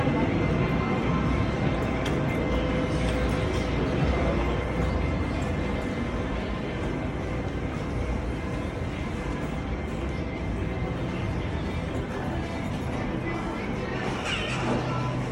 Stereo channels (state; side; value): identical; both; correlation 1.00